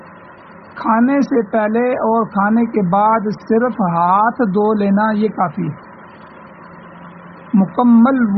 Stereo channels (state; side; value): identical; both; correlation 1.00